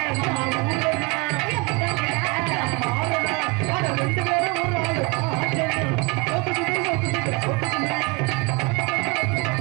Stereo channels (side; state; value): left; quieter; 26.7 dB